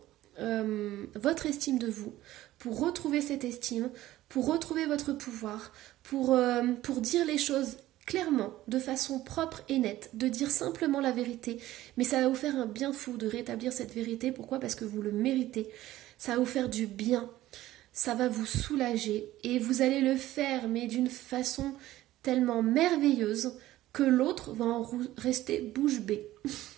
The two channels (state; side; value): quieter; left; 15.3 dB